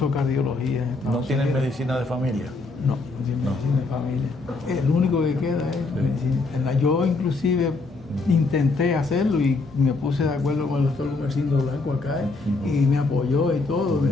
cardiología. ¿No tienen medicina de familia? No tienen medicina de familia. El único que queda es medicina interna. Yo inclusive intenté hacerlo y me puse de acuerdo con el doctor Gumercindo Blanco acá y me apoyó y todo. Me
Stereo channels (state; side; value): quieter; right; 3.6 dB